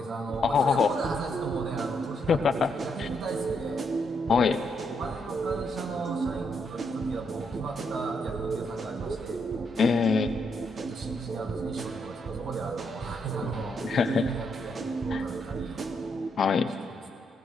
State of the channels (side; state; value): both; normal; correlation 0.77